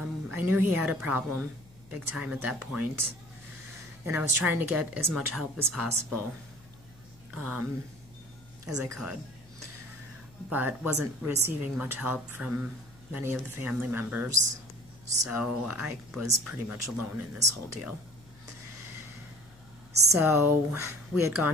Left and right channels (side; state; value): left; noise; hum, 25 dB below the sound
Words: knew he had a problem big time at that point, and I was trying to get as much help as possible as I could, but wasn't receiving much help from many of the family members, so I was pretty much alone in this whole deal. So we had